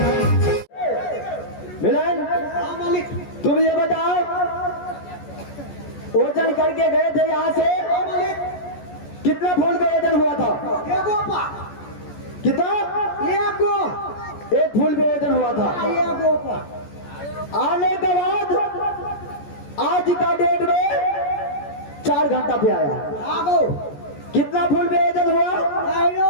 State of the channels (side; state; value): right; late; 14 ms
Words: तुम ये बताओ, ओजन करके गए थे यहाँ से, कितना फूल का ओजन हुआ था? कितना? एक फूल पे ओजन हुआ था। आने के बाद आज का डेट में 4 घंटा पे आया। कितना फूल पे ओजन हुआ?